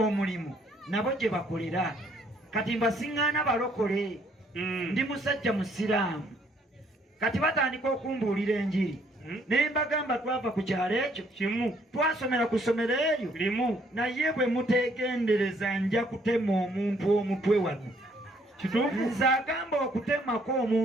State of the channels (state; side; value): normal; both; correlation 0.65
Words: nabo gye bakolera kati mbasiŋŋaana balokole ndi musajja musiraamu kati batandika okumbuulira enjiri ne mbagamba twava ku kyalo ekyo kimu twasomera ku ssomero eryo limu naye bwe muteegendereza nja kutema omuntu omutwe wano nze agamba okutemako